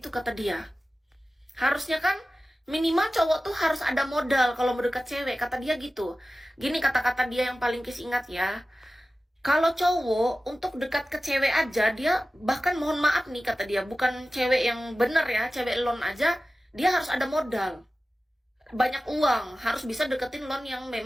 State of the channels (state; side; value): normal; both; correlation 0.95